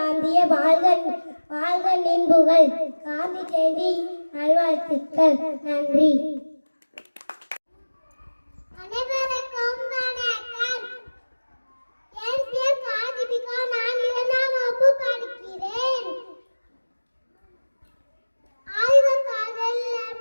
வாழ்க வாழ்க நின்புகள். காந்தி ஜெயந்தி நல்வாழ்த்துக்கள். நன்றி. அனைவருக்கும் வணக்கம். என் பேர் காதிபிகா. நான் 2ஆம் வகுப்பு படிக்கிறேன். ஆய்வகத்தில்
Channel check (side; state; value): both; inverted; correlation -1.00